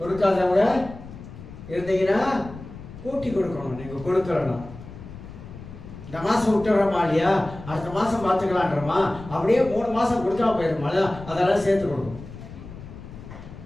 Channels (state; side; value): noise; left; rumble, 14 dB below the sound